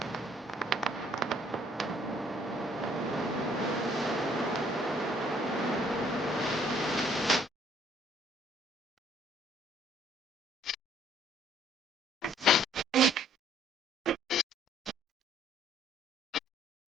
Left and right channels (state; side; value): normal; both; correlation 0.62